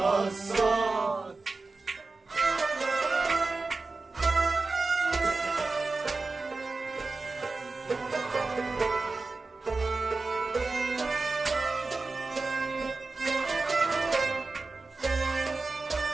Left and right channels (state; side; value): quieter; left; 3.7 dB